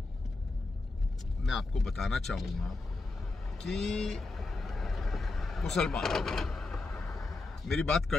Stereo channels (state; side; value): quieter; right; 3.4 dB